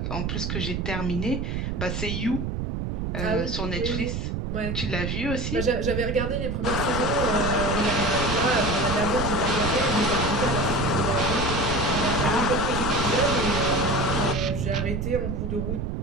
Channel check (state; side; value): noise; right; rumble, 2 dB below the sound